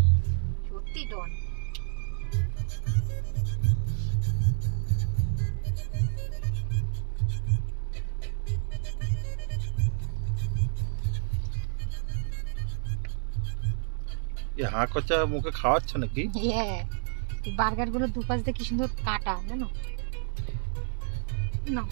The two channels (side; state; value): left; silent; 58 dB below the other